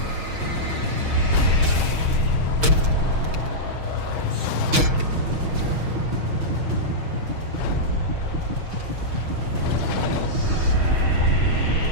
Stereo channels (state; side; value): late; left; 6.4 ms